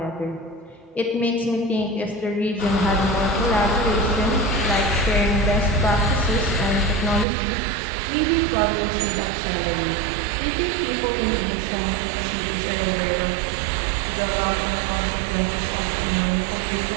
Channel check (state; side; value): drops out; left; at 7.2 s